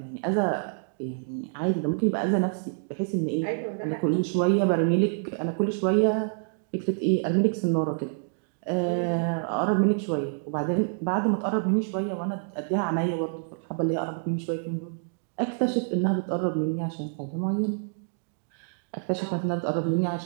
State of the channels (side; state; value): left; silent; digital silence